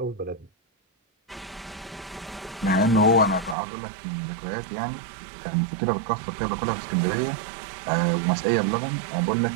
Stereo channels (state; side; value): drops out; left; at 3.6 s